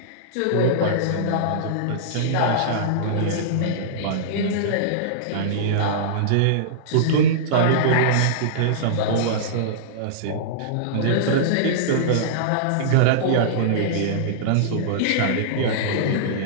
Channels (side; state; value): both; different; correlation -0.03